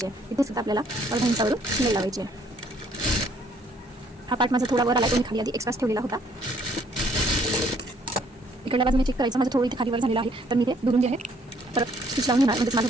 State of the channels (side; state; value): both; normal; correlation 0.64